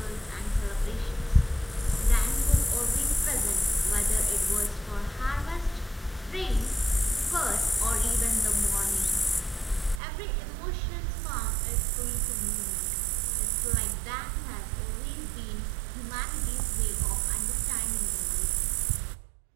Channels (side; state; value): left; drops out; at 10.0 s